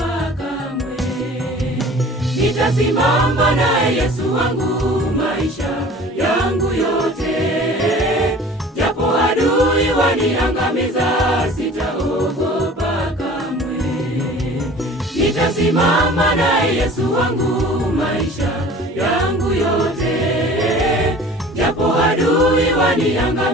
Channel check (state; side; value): normal; both; correlation 0.44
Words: kamwe. Nitasimama na Yesu wangu maisha yangu yote. Japo adui waniangamiza, sitaogopa kamwe. Nitasimama na Yesu wangu maisha yangu yote. Japo adui